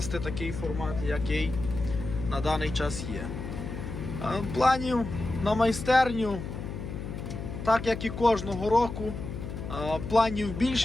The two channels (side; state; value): left; noise; hum, 7 dB below the sound